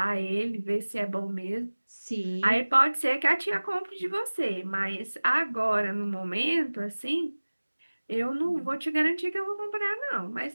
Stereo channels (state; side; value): inverted; both; correlation -1.00